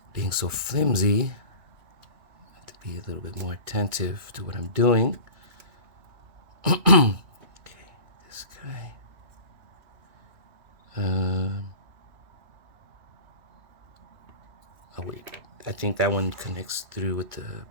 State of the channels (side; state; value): left; late; 2.3 ms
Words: Being so flimsy, I have to be a little bit more attentive to what I'm doing. Okay, this guy. Oh wait, I think that one connects through with the